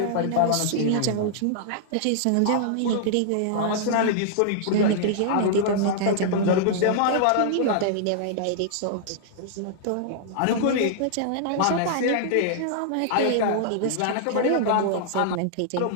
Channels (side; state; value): both; different; correlation -0.01